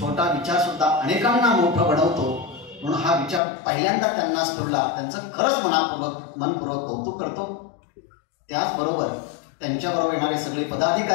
विचार सुद्धा अनेकांना मोठं बनवतो. म्हणून हा विचार पहिल्यांदा त्यांना स्फुरला, त्यांचं खरंच मनपूर्वक कौतुक करतो. त्याचबरोबर त्यांच्याबरोबर येणारे सगळे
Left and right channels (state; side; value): drops out; right; at 3.4 s